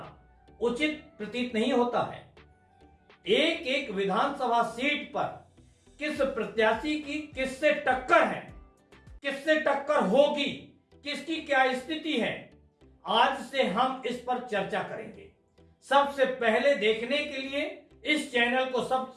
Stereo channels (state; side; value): identical; both; correlation 1.00